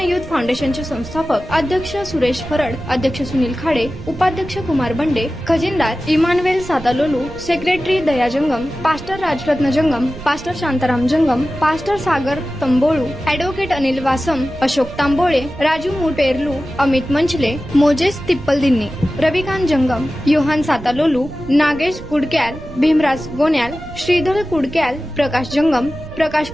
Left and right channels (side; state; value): right; noise; rumble, 14 dB below the sound